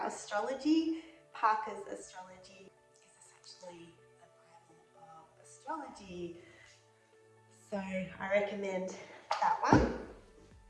astrology, Parker's Astrology is essentially the Bible of astrology. So I recommend that one.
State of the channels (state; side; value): identical; both; correlation 1.00